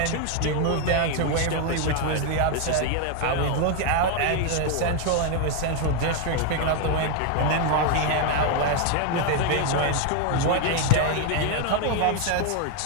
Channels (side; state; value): both; different; correlation 0.01